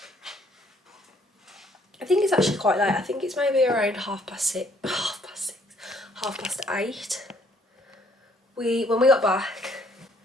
I think it's actually quite late. I think it's maybe around half past 8. When we got back,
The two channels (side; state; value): both; normal; correlation 0.64